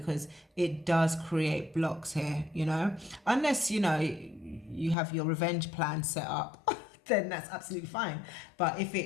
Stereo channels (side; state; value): right; drops out; at 5.0 s